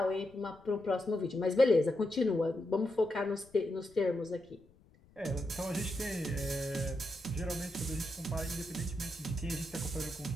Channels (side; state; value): left; noise; rumble, 27 dB below the sound